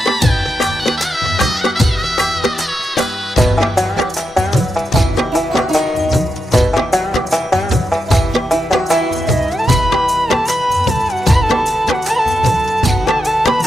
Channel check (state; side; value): normal; both; correlation 0.87